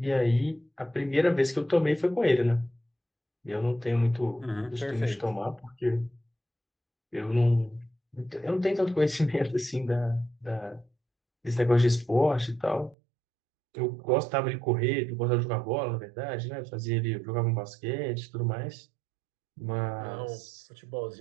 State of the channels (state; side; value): drops out; left; at 13.0 s